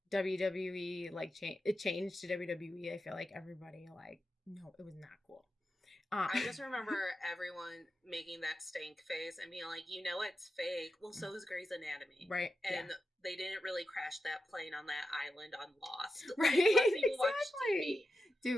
WWE, like it changed to WWE. I feel like everybody like, no, it was not cool. I just remember everyone making that stank face and being like, you know, it's fake. Well, so is Grey's Anatomy. Right. And they didn't really crash that plane on that island on Lost. Right. Exactly.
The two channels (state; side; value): normal; both; correlation 0.90